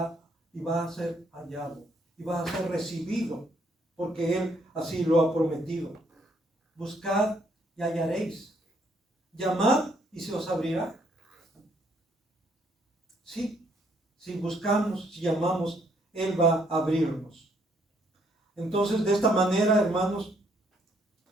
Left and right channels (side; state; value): both; normal; correlation 0.69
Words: a ser hallado, y va a ser recibido, porque Él así lo ha prometido. Buscad y hallaréis. Llamad y se os abrirá. Sí, si buscamos, si llamamos, Él va a abrirnos. Entonces, de esta manera, hermanos,